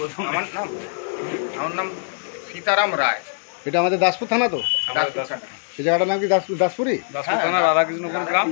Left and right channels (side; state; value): right; silent; digital silence